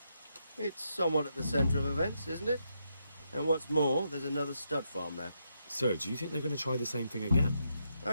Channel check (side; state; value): both; inverted; correlation -0.81